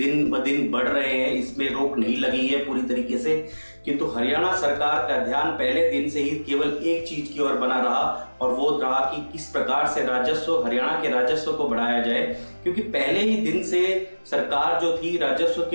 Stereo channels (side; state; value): both; inverted; correlation -1.00